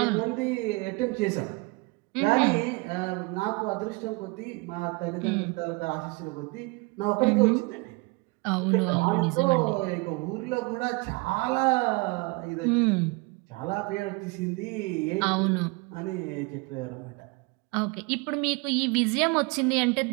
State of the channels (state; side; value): quieter; left; 26.5 dB